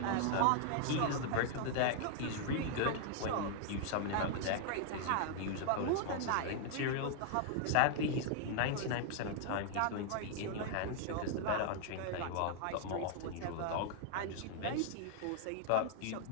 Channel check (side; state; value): both; different; correlation 0.00